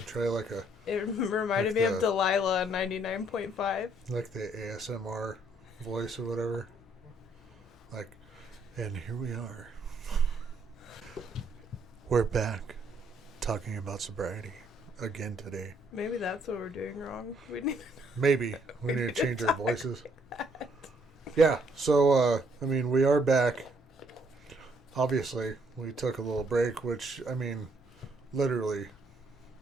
try It reminded me of Delilah on 99.5. like the ASMR voice or whatever. And here we are. We're back talking about sobriety again today. Maybe that's what we're doing wrong. Maybe. We need to change our voices. Yeah, so, we are back. Obviously, we took a little break, which, literally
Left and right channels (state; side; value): normal; both; correlation 0.68